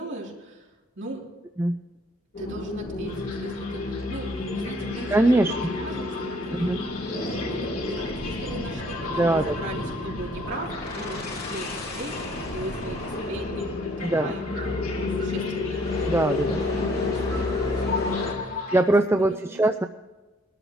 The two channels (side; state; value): both; normal; correlation 0.64